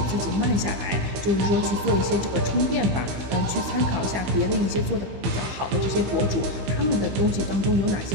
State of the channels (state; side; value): late; left; 15 ms